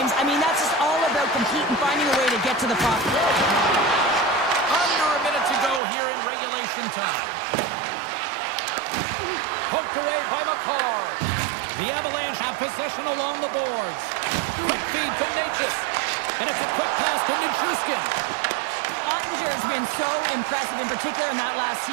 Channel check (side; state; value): left; drops out; at 5.8 s